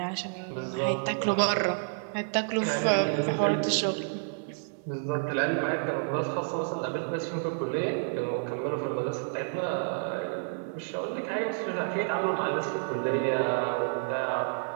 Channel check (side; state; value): left; silent; digital silence